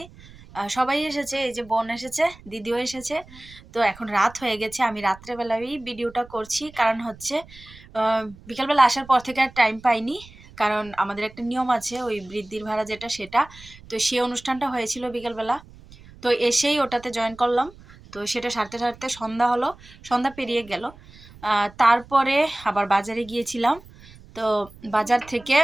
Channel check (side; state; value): right; noise; rumble, 21 dB below the sound